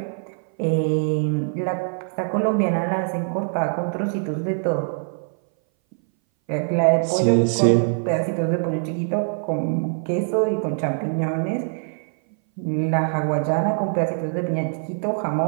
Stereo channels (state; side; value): silent; left; 59 dB below the other